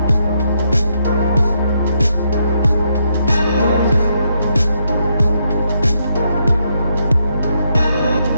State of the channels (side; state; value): both; inverted; correlation -0.78